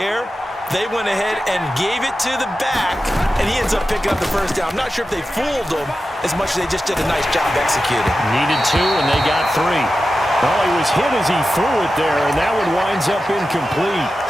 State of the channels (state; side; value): normal; both; correlation 0.92